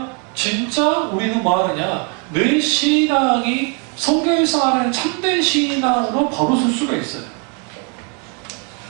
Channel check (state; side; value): quieter; left; 36.9 dB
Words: 진짜 우리는 뭐 하느냐? 내 신앙이 성경에서 말하는 참된 신앙으로 바로 설 수가 있어요.